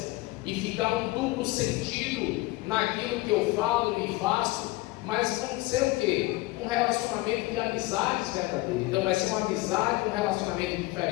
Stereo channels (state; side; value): quieter; right; 20.6 dB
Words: e ficar um duplo sentido naquilo que eu falo e faço, mas vão ser o quê? Um relacionamento de amizades verdadeiras. Então vai ser uma amizade, um relacionamento